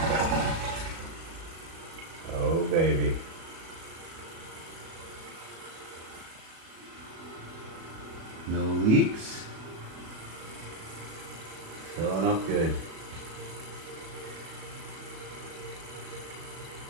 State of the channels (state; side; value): late; left; 37 ms